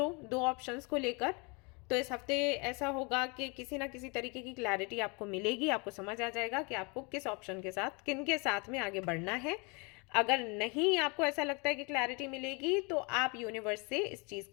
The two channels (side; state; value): right; quieter; 30.6 dB